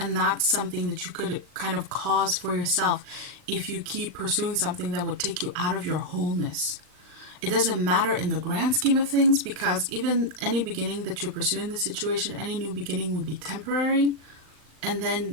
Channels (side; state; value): left; late; 39 ms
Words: that's something that you could kind of cause for yourself if you keep pursuing something that would take you out of your wholeness. It doesn't matter in the grand scheme of things, because even any beginning that you pursue in this situation, any new beginning would be temporary. And then